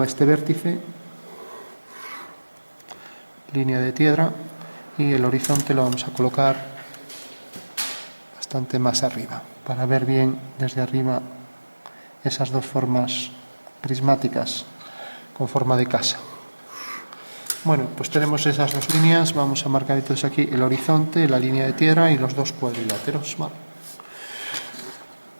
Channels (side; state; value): both; inverted; correlation -1.00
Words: a este vértice, línea de tierra, y el horizonte lo vamos a colocar bastante más arriba, para ver bien desde arriba esas dos formas prismáticas con forma de casa. Bueno, pues tenemos esas dos líneas, vamos a marcar entonces aquí el horizonte, la línea de tierra y los dos cuadriláteros. Vale.